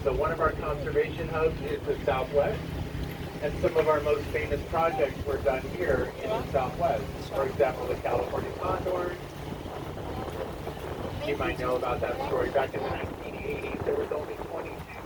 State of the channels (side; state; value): both; identical; correlation 1.00